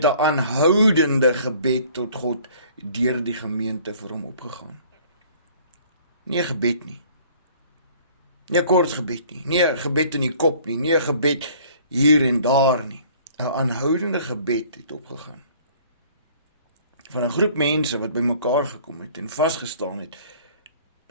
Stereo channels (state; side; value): inverted; both; correlation -0.54